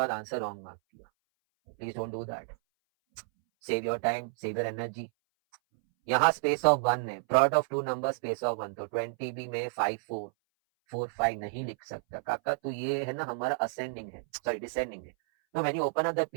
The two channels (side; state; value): left; silent; 57 dB below the other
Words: आंसर रॉन्ग मार्क किया. Please don't do that. Save your time, save your energy. यहाँ space of 1 है, product of two number space of 1, तो 20 भी में 5 4. 4 5 नहीं लिख सकता काका, तो ये है ना हमारा असेंडिंग है, सॉरी डिसेंडिंग है। तो when you open up the